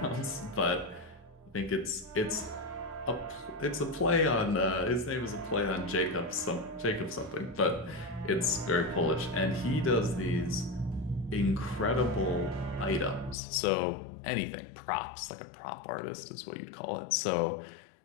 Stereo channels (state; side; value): drops out; right; at 13.4 s